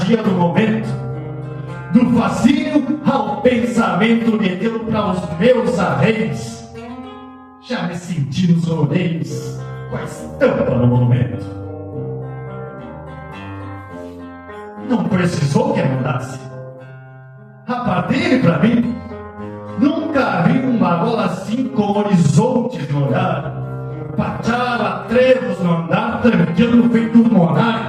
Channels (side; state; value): both; identical; correlation 1.00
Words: do momento, do fascínio ao pensamento meteu para os meus arreios. Já me senti nos rodeios com a estampa no monumento. Não precisou que ajudasse. A partir para mim, nunca vi um bagola assim com horizontes no olhar, pachava trevos no andar, tranquilo feito um